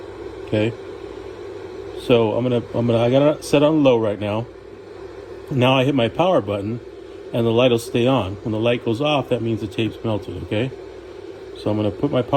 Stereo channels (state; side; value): identical; both; correlation 1.00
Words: Okay. So I got it set on low right now. Now I hit my power button, and the light will stay on. When the light goes off, that means the tape's melted. Okay. So I'm going to put my